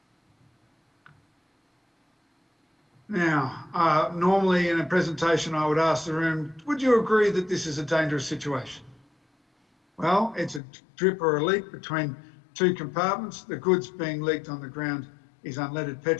Now, normally in a presentation, I would ask the room, would you agree that this is a dangerous situation? Well, it's a drip or a leak between two compartments. The goods being leaked on the ground is unleaded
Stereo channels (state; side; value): drops out; right; at 10.6 s